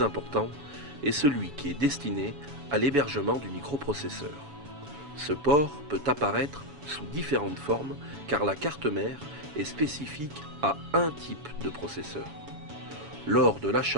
important est celui qui est destiné à l'hébergement du microprocesseur. Ce port peut apparaître sous différentes formes car la carte mère est spécifique à un type de processeur. Lors de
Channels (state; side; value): late; left; 6.9 ms